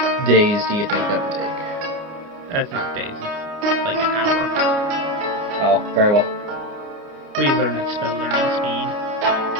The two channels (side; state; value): left; late; 29 ms